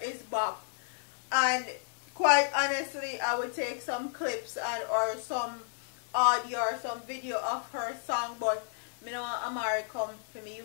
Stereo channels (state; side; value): silent; right; 56 dB below the other